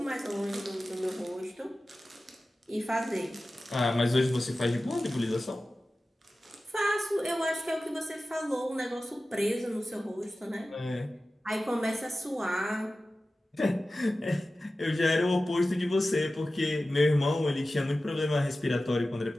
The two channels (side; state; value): both; normal; correlation 0.95